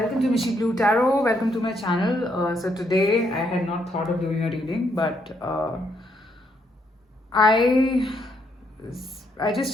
to Mishi Blue Tarot. Welcome to my channel. So today I had not thought of doing a reading, but I I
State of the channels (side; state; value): both; normal; correlation 0.74